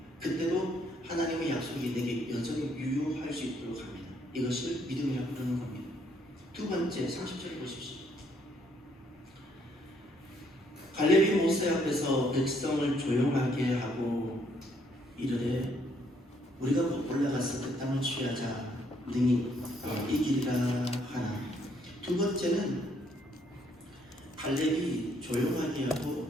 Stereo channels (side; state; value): both; normal; correlation 0.69